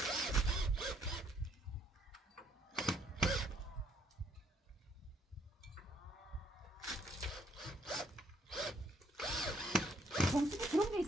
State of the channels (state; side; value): normal; both; correlation 0.67